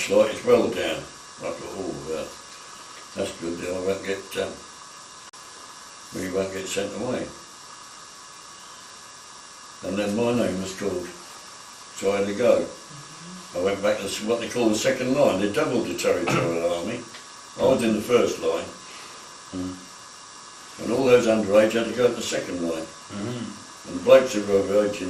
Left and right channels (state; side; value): identical; both; correlation 1.00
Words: like, it's well down. I thought, oh, that's good, I won't get, we won't get sent away. And then my name was called, so I had to go. I went back to what they call the second line. They doubled the territorial army. I was in the first line. And all those underage had to go to the second line. And the blokes who were overage